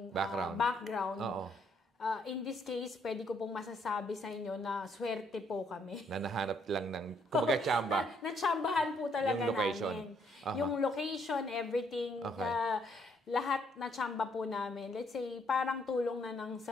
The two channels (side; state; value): both; normal; correlation 0.69